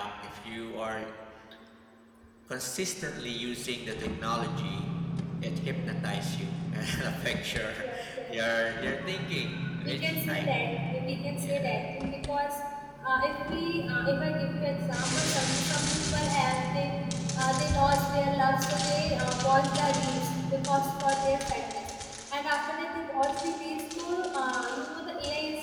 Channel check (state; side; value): identical; both; correlation 1.00